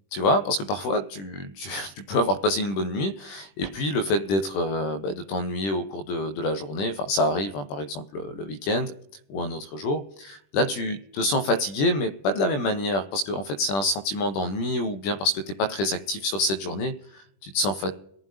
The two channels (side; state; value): right; late; 21 ms